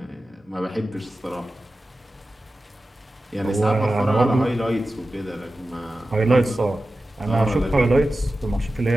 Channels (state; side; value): normal; both; correlation 0.94